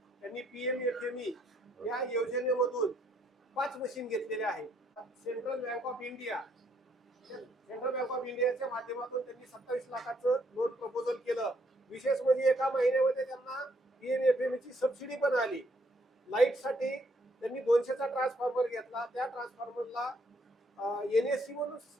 त्यांनी PMFME या योजनेमधून 5 मशीन घेतलेल्या आहेत. सेंट्रल बँक ऑफ इंडियाच्या माध्यमातून त्यांनी 27 लाखाचं लोन प्रपोजल केलं. विशेष म्हणजे एका महिन्यामध्ये त्यांना PMFME ची सबसिडी पण आली. लाईटसाठी त्यांनी 200चा ट्रान्सफॉर्मर घेतला. त्या ट्रान्सफॉर्मरला NSC म्हणून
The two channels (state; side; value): normal; both; correlation 0.70